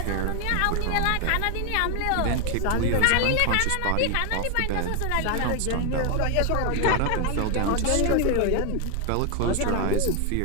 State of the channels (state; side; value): different; both; correlation 0.01